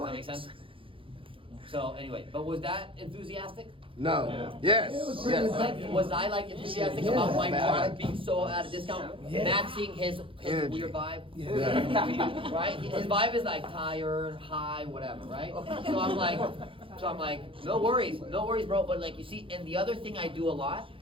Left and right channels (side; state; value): left; late; 0.25 ms